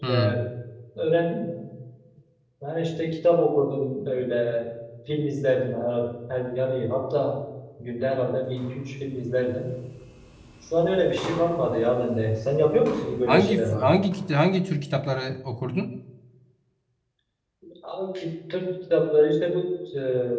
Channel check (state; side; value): identical; both; correlation 1.00